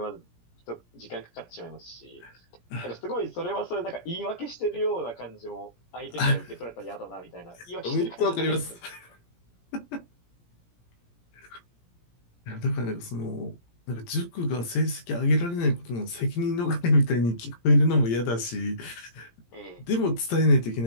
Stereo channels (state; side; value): late; right; 17 ms